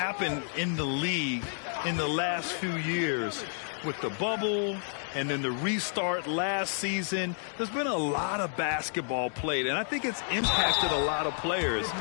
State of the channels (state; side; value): silent; right; 58 dB below the other